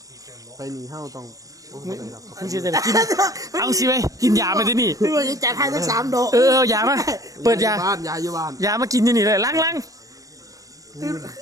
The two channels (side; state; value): left; late; 0.16 ms